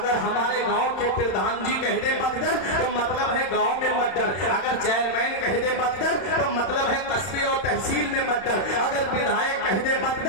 ہمارے گاؤں کے پردھان جی کہہ دے مقدر تو مطلب ہے گاؤں میں مت ڈر، اگر چیئرمین کہہ دے مقدر تو مطلب ہے قصبے اور تحصیل میں مت ڈر، اگر ودھایک کہہ دے مت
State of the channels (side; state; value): right; late; 31 ms